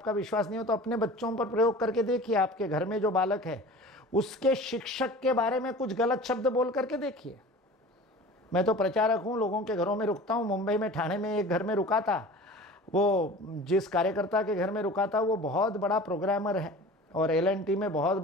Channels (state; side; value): normal; both; correlation 0.40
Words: विश्वास नहीं हो तो अपने बच्चों पर प्रयोग करके देखिए। आपके घर में जो बालक है उसके शिक्षक के बारे में कुछ गलत शब्द बोल करके देखिए। मैं तो प्रचारक हूं, लोगों के घरों में रुकता हूं। मुंबई में, ठाणे में एक घर में रुका था। वो जिस कार्यकर्ता के घर में रुका था वो बहुत बड़ा प्रोग्रामर है और LNT में बहुत